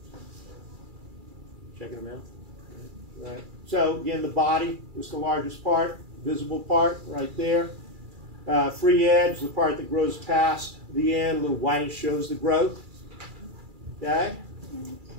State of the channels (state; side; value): late; left; 2.3 ms